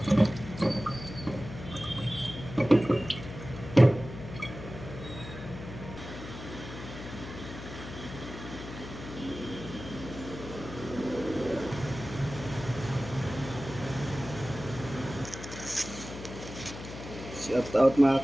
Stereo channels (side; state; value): left; noise; hum, 11 dB below the sound